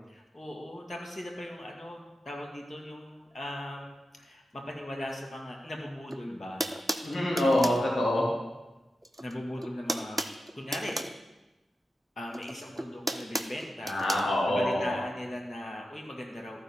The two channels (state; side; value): normal; both; correlation 0.91